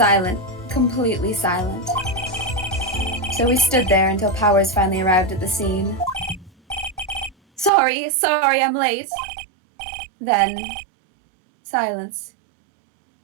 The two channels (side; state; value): left; drops out; at 7.7 s